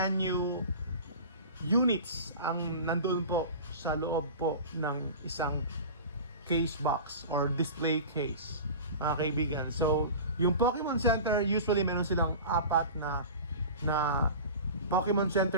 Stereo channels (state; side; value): inverted; both; correlation -0.34